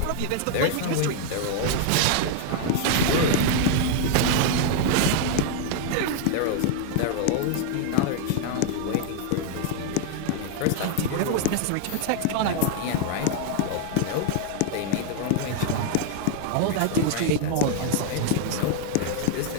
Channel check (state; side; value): different; both; correlation 0.00